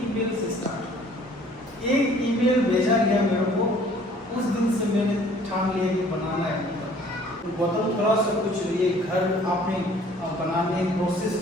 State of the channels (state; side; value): normal; both; correlation 0.55